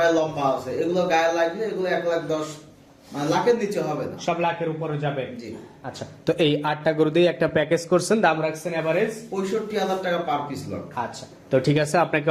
লম্বা আছে, এগুলো গায়ে লাগলে এগুলো 1,10,000 মানে লাখের নিচে হবে না, সব লাখের উপরে যাবে। জি। আচ্ছা, তো এই 8টা গরু দিয়ে একটা প্যাকেজ করছেন, দাম রাখছেন এভারেজ 65,000 টাকা পার পিস লট। আচ্ছা, তো ঠিক আছে, আপনাকে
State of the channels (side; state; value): both; identical; correlation 1.00